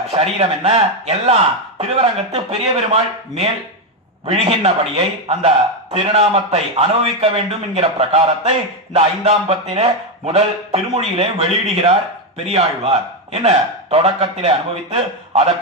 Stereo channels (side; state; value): both; normal; correlation 0.07